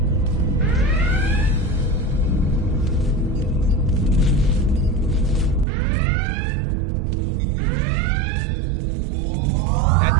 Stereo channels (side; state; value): left; drops out; at 5.7 s